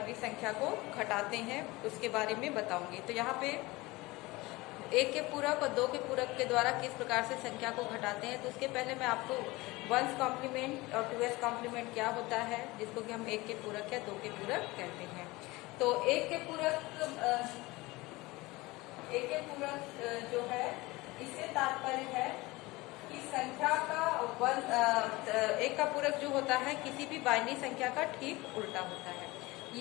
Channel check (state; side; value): quieter; right; 21.5 dB